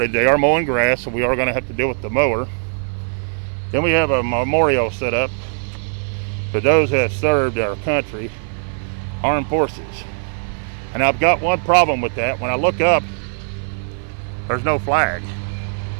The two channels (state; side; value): silent; left; 55 dB below the other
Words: They are mowing grass, so we are going to have to deal with the mower. Then we have a memorial set up for those who have served our country, armed forces. And I've got one problem with that. When I look up, there's no flag.